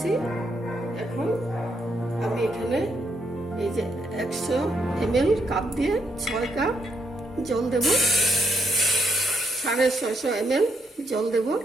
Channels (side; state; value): both; normal; correlation 0.76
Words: এখন আমি এখানে এই যে 100 ml কাপ দিয়ে 6 কাপ জল দেব, 650 ml জল দেব।